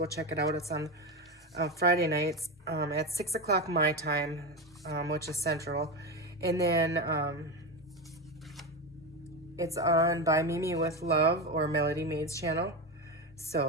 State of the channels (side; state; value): both; normal; correlation 0.17